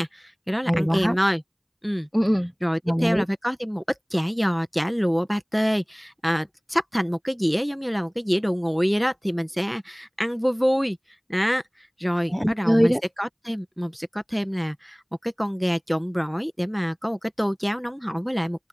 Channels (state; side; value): identical; both; correlation 1.00